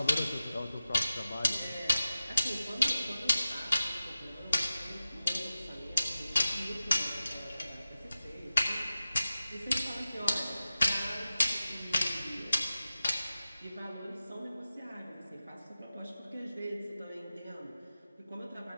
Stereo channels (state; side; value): inverted; both; correlation -0.94